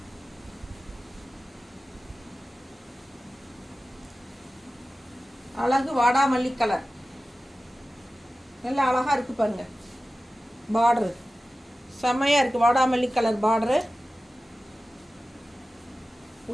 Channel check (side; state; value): both; normal; correlation 0.95